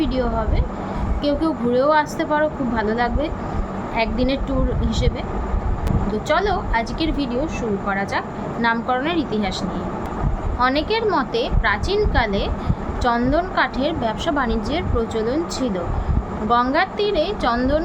ভিডিও হবে। কেউ কেউ ঘুরেও আসতে পারো, খুব ভালো লাগবে একদিনের ট্যুর হিসেবে। তো চলো আজকের ভিডিও শুরু করা যাক নামকরণের ইতিহাস নিয়ে। অনেকের মতে প্রাচীনকালে চন্দন কাঠের ব্যবসা বাণিজ্যের প্রচলন ছিল। গঙ্গার তীরে চন্দন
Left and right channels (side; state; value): both; identical; correlation 1.00